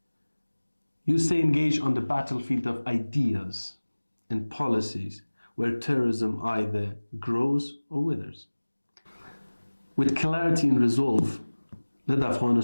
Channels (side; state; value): both; inverted; correlation -1.00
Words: You stay engaged on the battlefield of ideas and policies where terrorism either grows or withers. With clarity and resolve, let